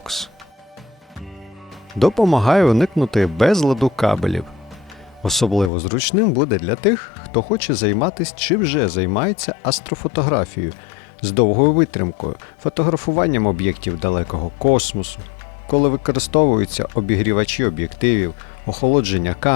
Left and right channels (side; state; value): right; drops out; at 5.7 s